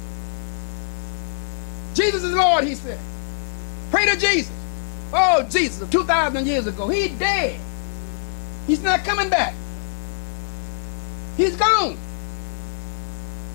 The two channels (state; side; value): silent; right; digital silence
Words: Jesus is Lord, he said. Pray to Jesus. Oh, Jesus, 2,000 years ago. He's dead. He's not coming back. He's gone.